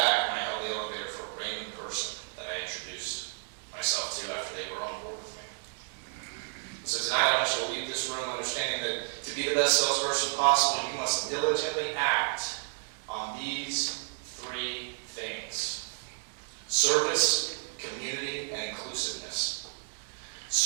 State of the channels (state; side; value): silent; left; 57 dB below the other